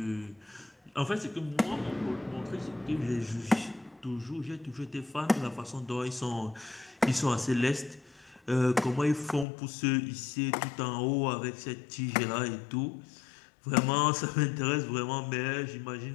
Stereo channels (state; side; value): drops out; right; at 9.5 s